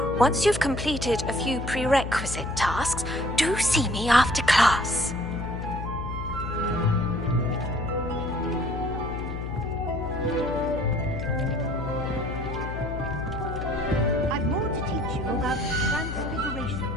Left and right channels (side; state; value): left; noise; hum, 6 dB below the sound